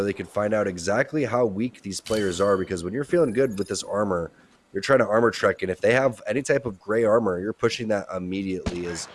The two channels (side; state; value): both; identical; correlation 1.00